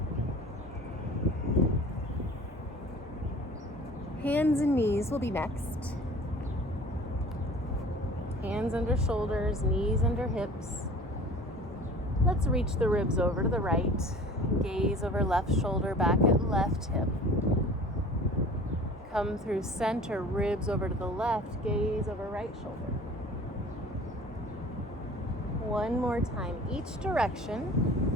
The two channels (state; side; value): normal; both; correlation 0.44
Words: Hands and knees will be next. Hands under shoulders, knees under hips. Let's reach the ribs over to the right. Gaze over left shoulder, back at left hip. Come through center, ribs over to the left, gaze over right shoulder. One more time, each direction.